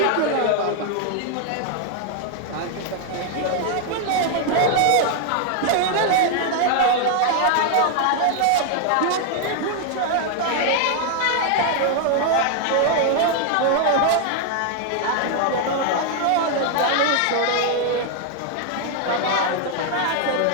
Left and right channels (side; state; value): both; different; correlation 0.00